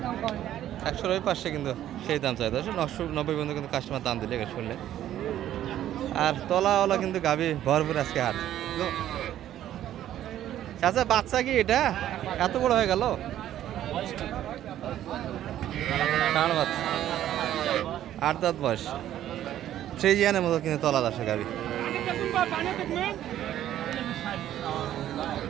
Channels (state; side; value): quieter; left; 12.0 dB